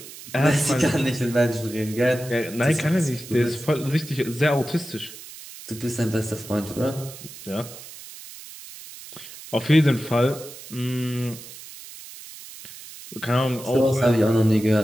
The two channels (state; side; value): noise; right; hiss, 15 dB below the sound